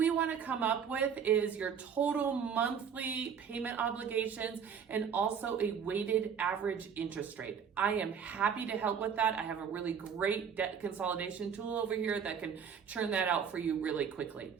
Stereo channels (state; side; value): quieter; left; 7.2 dB